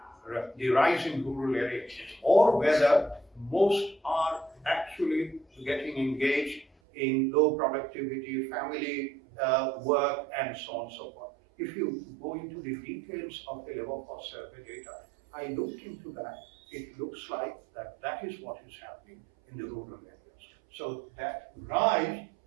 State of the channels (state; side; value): drops out; left; at 6.7 s